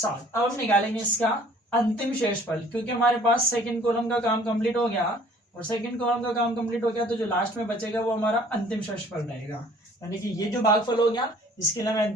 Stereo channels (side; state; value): both; normal; correlation 0.54